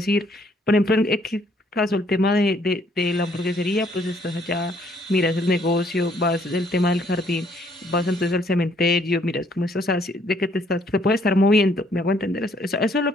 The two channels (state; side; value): normal; both; correlation 0.66